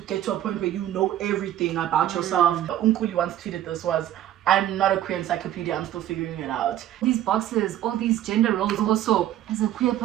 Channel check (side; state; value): left; quieter; 12.4 dB